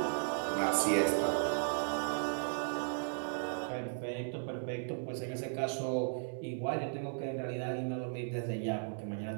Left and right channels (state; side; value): silent; left; digital silence